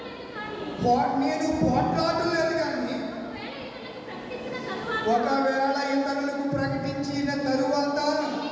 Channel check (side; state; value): both; identical; correlation 1.00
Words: నేను పోట్లాడలేదు. కానీ ఒకవేళ ఇతరులకు ప్రకటించిన తరువాత